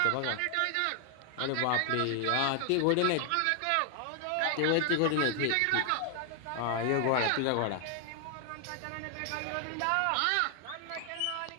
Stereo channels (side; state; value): both; different; correlation 0.00